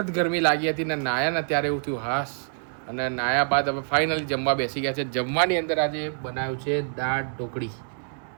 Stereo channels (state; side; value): silent; left; digital silence